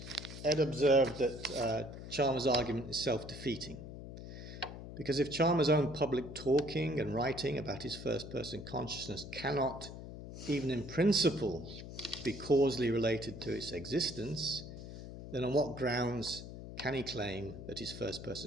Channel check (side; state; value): left; noise; hum, 11 dB below the sound